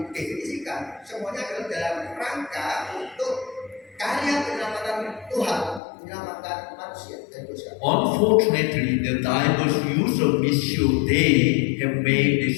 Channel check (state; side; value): drops out; right; at 5.8 s